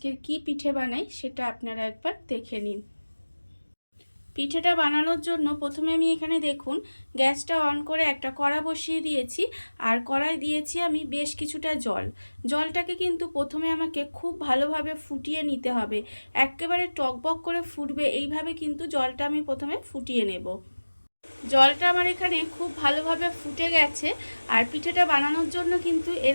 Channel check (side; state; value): both; inverted; correlation -1.00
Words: কি পিঠে বানাই সেটা আপনারা একবার দেখে নিন। পিঠেটা বানানোর জন্য প্রথমে আমি এখানে দেখুন গ্যাসটা অন করে একটা কড়া বসিয়ে দিয়েছি। আর কড়াই দিয়েছি আমি বেশ কিছুটা জল। জলটাকে কিন্তু প্রথমে আমাকে খুব ভালোভাবে ফুটিয়ে নিতে হবে। একেবারে টকবক করে ফুটবে এইভাবে কিন্তু জলটা আমি প্রথমে ফুটিয়ে নেব। জলটা আমার এখানে খুব ভালোভাবে ফুটে গেছে। আর পিঠেটা বানানোর জন্য কিন্তু